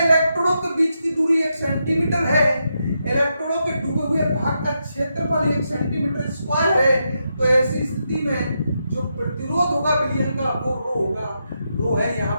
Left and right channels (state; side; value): inverted; both; correlation -0.84